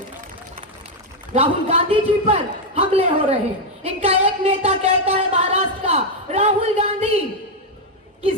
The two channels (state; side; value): normal; both; correlation 0.02